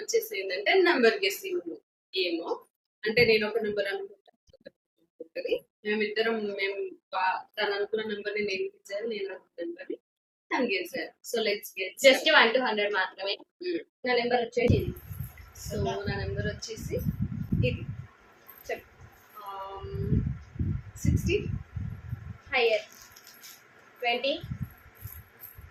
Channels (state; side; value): identical; both; correlation 1.00